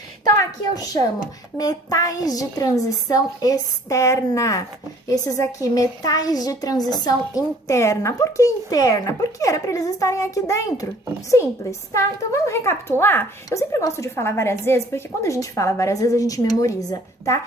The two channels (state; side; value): normal; both; correlation 0.55